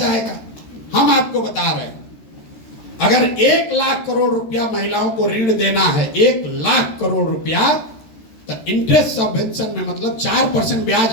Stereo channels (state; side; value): late; right; 13 ms